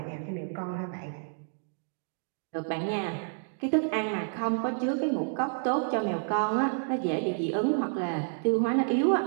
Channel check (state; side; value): silent; left; digital silence